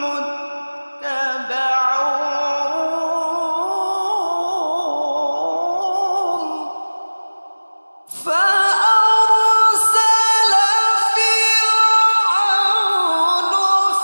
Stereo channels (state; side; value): inverted; both; correlation -1.00